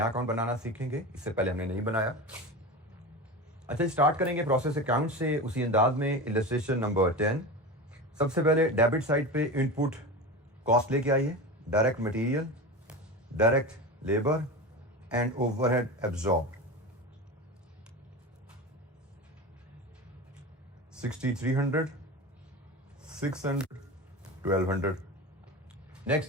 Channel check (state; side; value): normal; both; correlation 0.26